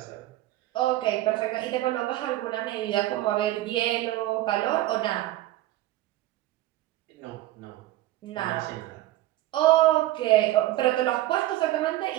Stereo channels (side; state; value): left; quieter; 15.6 dB